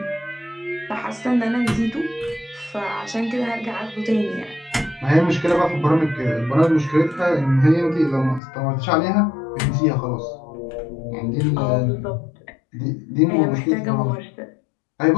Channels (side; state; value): right; drops out; at 8.4 s